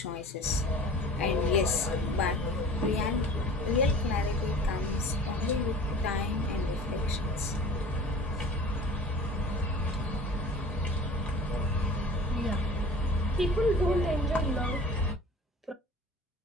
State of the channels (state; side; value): normal; both; correlation 0.42